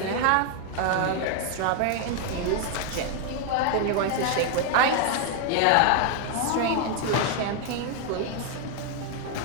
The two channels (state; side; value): different; both; correlation 0.00